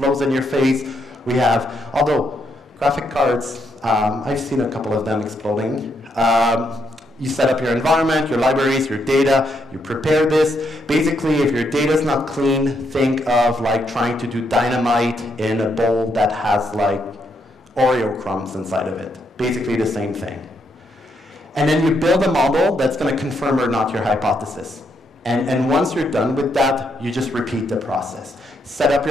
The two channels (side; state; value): both; normal; correlation 0.77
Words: in your face. We have, although graphic cards, I've seen a couple of them exploding. You set up your environment, your libraries, your data, you prepare this. Basically, if your data is not clean, think of like trying to do dynamite in a bowl that has like Oreo crumbs inside of it. Basically the same thing. And then you build a model that's going to confirm or not your hypothesis. And once you're done with that, you just repeat the process. Set up